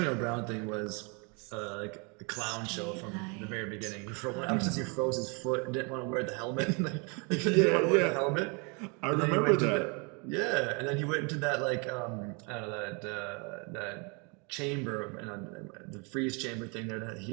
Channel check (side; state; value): left; quieter; 32.5 dB